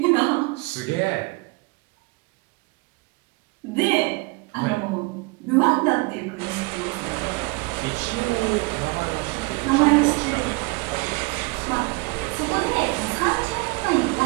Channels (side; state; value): left; quieter; 26.7 dB